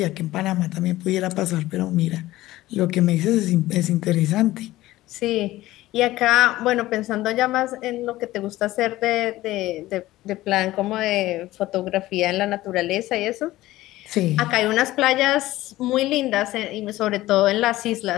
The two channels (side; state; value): right; quieter; 16.7 dB